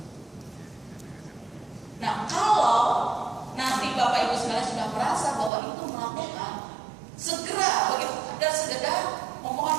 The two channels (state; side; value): drops out; left; at 5.5 s